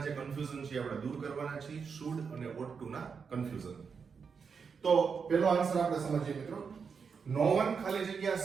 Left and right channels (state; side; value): quieter; left; 5.9 dB